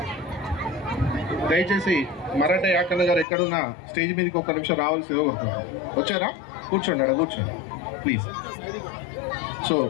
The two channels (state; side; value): drops out; right; at 3.2 s